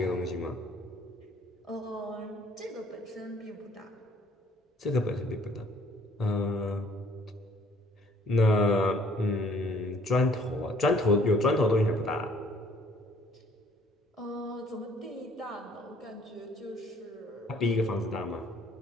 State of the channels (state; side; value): normal; both; correlation 0.59